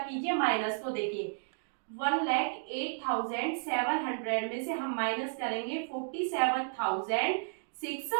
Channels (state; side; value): silent; left; digital silence